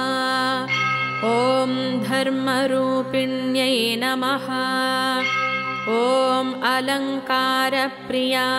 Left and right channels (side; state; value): both; identical; correlation 1.00